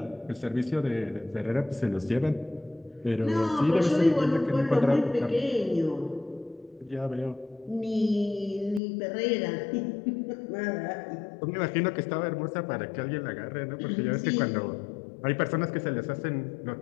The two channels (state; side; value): drops out; right; at 8.8 s